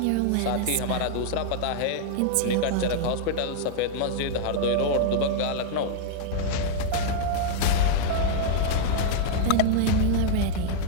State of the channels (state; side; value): different; both; correlation -0.01